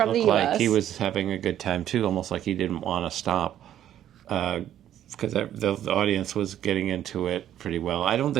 the U.S. Like he was having a good time too, almost like he didn't want to stop. Because the audience was getting into it pretty well. I don't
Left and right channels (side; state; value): left; quieter; 11.2 dB